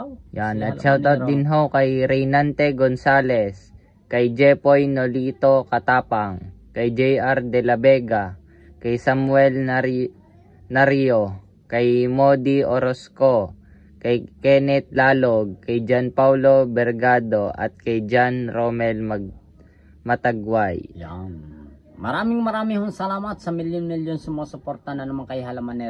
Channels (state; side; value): identical; both; correlation 1.00